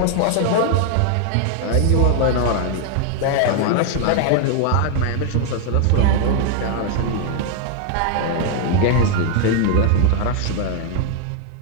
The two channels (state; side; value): different; both; correlation 0.00